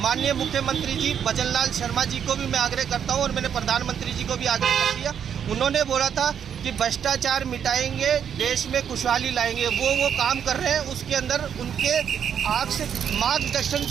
मुख्यमंत्री जी भजनलाल शर्मा जी को भी मैं आग्रह करता हूं और मैंने प्रधानमंत्री जी को भी आग्रह कर दिया। उन्होंने बोला था कि भ्रष्टाचार मिटाएंगे, देश में खुशहाली लाएंगे। वो काम कर रहे हैं। उसके अंदर उनके मार्गदर्शन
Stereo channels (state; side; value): quieter; left; 8.3 dB